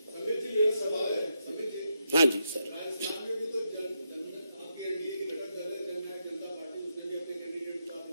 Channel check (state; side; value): inverted; both; correlation -0.82